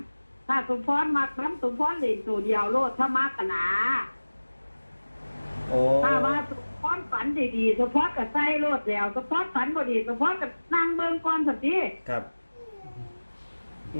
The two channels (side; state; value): both; inverted; correlation -1.00